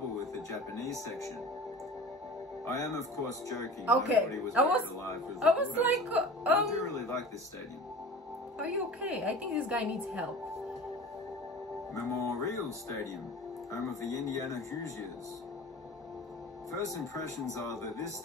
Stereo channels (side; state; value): both; normal; correlation 0.38